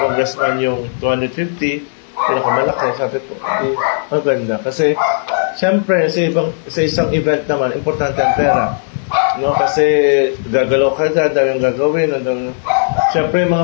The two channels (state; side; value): silent; right; digital silence